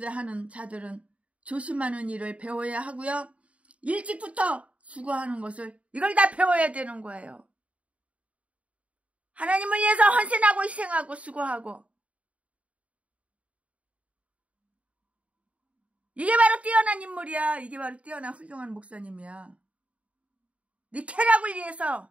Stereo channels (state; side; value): late; left; 0.065 ms